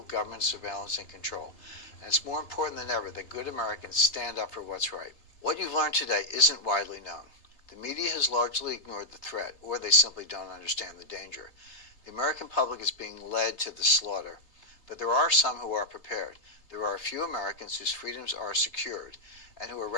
government surveillance and control. And it's more important than ever that good Americans stand up for what's right. What you've learned today isn't widely known. The media has largely ignored the threat, or they simply don't understand the danger. The American public is being led to the slaughter, but there are some who are prepared. There are a few Americans whose freedoms are secured and who are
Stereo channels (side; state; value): right; late; 3.3 ms